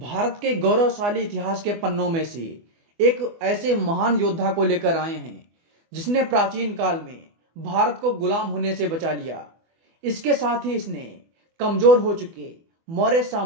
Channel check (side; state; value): left; late; 24 ms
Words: के गौरवशाली इतिहास के पन्नों में से एक ऐसे महान योद्धा को लेकर आए हैं जिसने प्राचीन काल में भारत को गुलाम होने से बचा लिया। इसके साथ ही इसने कमजोर हो चुके मौर्य